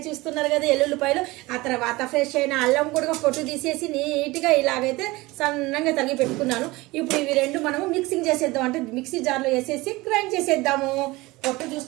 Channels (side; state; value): left; quieter; 21.3 dB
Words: చూస్తున్నారు కదా ఎల్లుల్లిపాయలు. ఆ తర్వాత ఫ్రెష్ అయిన అల్లం కూడా పొట్టు తీసేసి నీట్గా ఇలాగైతే సన్నంగా తరిగి పెట్టుకున్నాను. ఇప్పుడు ఇవి రెండు మనము మిక్సింగ్ చేసేద్దాం, అంటే మిక్సీ జార్లో వేసేసి గ్రైండ్ చేసేద్దాము. పొట్టు